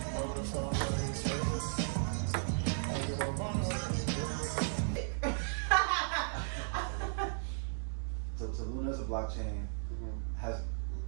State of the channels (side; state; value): left; silent; digital silence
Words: So Luna is a blockchain, has